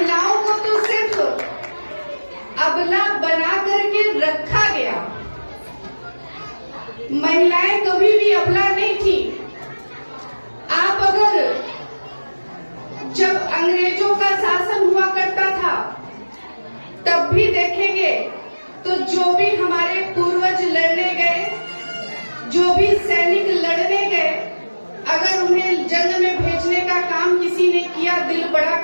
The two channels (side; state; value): both; inverted; correlation -1.00